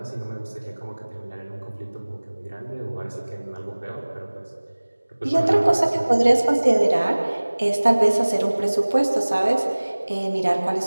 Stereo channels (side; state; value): both; inverted; correlation -1.00